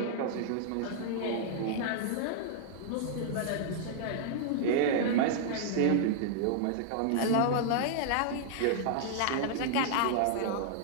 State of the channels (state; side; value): different; both; correlation -0.01